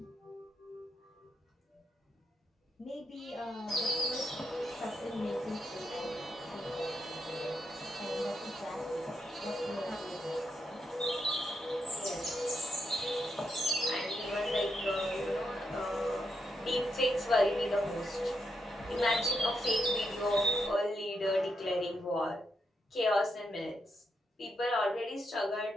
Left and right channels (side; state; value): both; normal; correlation 0.82